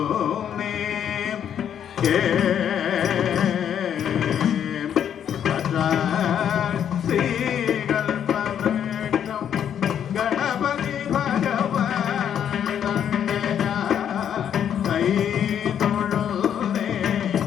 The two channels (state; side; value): quieter; right; 9.1 dB